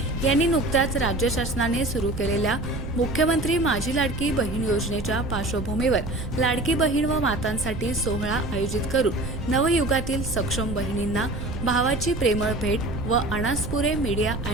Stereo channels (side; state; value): right; noise; rumble, 7 dB below the sound